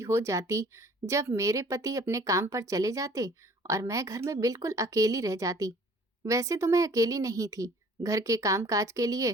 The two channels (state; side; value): normal; both; correlation 0.52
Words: हो जाती जब मेरे पति अपने काम पर चले जाते और मैं घर में बिल्कुल अकेली रह जाती। वैसे तो मैं अकेली नहीं थी। घर के कामकाज के